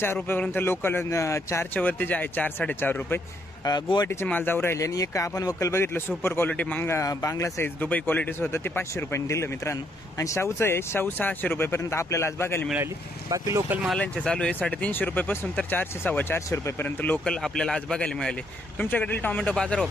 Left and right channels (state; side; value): normal; both; correlation 0.73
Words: रुपयापर्यंत लोकल 4च्या वरती जे आहे 4 4.5 रुपये गुवाहाटीचे माल जाऊ राहिले. आणि एक आपण वक्कल बघितलं सुपर क्वालिटी बांगला साईज दुबई क्वालिटीचं होतं ते 500 रुपयांनी दिलं मित्रांनो. आणि शाहूचं आहे शाहू 600 रुपयेपर्यंत आपल्याला आज बघायला मिळाली. बाकी लोकल मालांचे चालू आहे 350 रुपयापासून तर 400 450 रुपयेपर्यंत लोकल आपल्याला आज बघायला मिळाले. तुमच्याकडील टोमॅटो बाजार